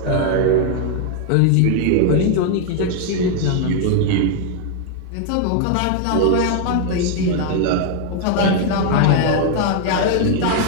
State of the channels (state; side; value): different; both; correlation 0.00